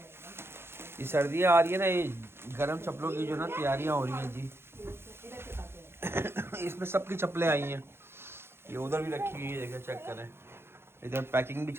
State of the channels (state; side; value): late; left; 0.12 ms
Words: ये सर्दियाँ आ रही है ना, ये गर्म चप्पलों की जो ना तैयारियां हो रही हैं जी। इसमें सबकी चप्पलें आई हैं, ये उधर भी रखी हुई है, जगह चेक करें। इधर पैकिंग भी